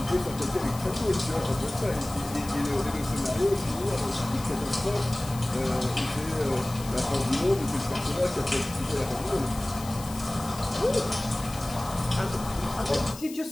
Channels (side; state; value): left; noise; hiss, 15 dB below the sound